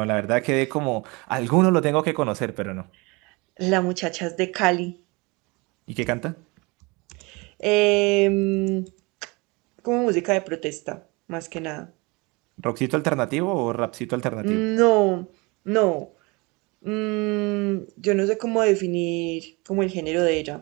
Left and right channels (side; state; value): left; quieter; 26.6 dB